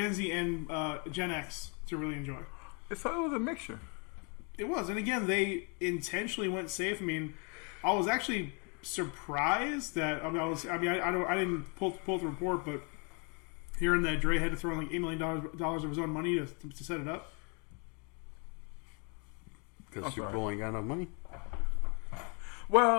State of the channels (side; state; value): right; quieter; 34.8 dB